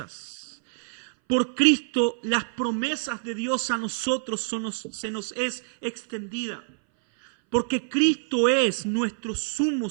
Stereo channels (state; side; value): silent; left; 59 dB below the other